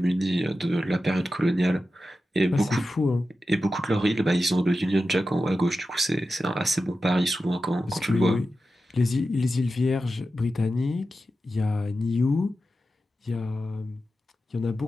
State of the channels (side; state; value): both; normal; correlation 0.92